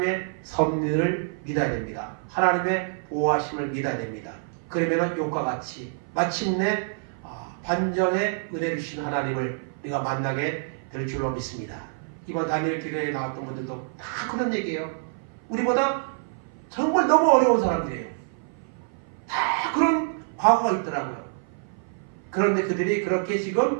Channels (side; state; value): left; silent; 56 dB below the other